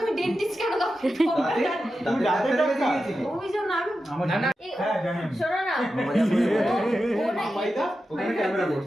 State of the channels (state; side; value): normal; both; correlation 0.91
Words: তুমি ডেন্টিস্ট কেন দাও? তুমি রাতে টাকা দিয়েছিলে? ওই জন্য আমি না না হ্যাঁ জানেন, শোনো না ওখানে ক্যামেরা